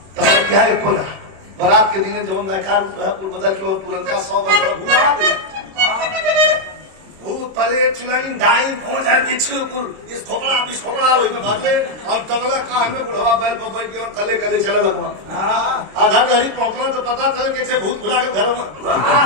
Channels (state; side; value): late; left; 26 ms